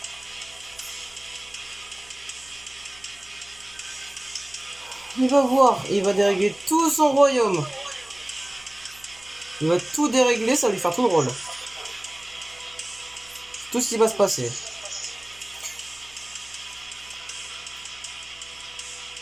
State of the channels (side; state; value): right; noise; hum, 26 dB below the sound